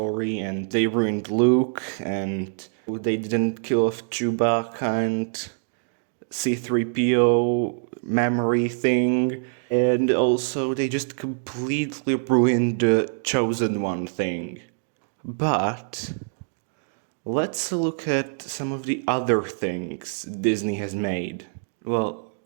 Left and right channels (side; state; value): left; silent; digital silence